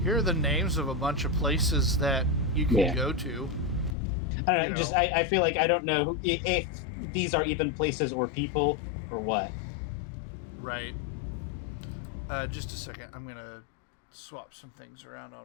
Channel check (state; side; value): drops out; right; at 4.0 s